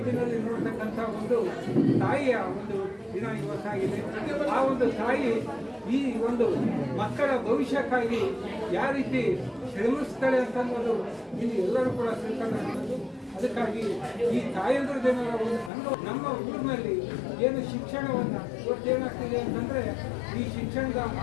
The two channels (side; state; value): right; drops out; at 15.7 s